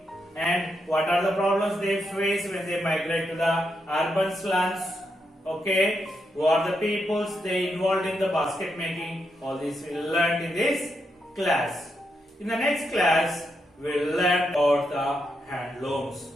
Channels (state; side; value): normal; both; correlation 0.82